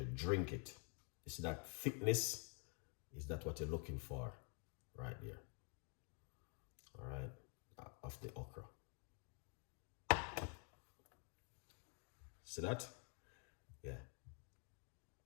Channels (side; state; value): right; quieter; 39.9 dB